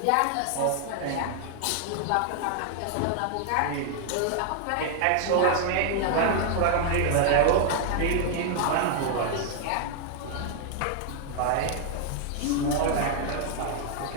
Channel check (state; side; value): different; both; correlation 0.00